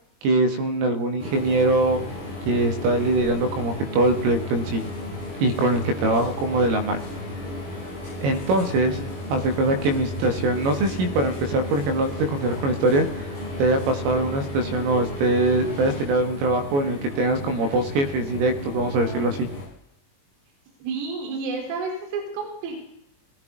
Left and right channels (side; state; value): left; late; 22 ms